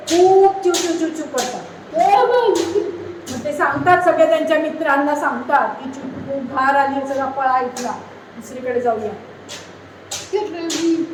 चिवचिव करतात. मग ते सांगतात, सगळे त्यांच्या मित्रांना सांगतात की खूप घार आली, सगळा पळा इथला, दुसरीकडे जाऊया.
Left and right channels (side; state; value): both; identical; correlation 1.00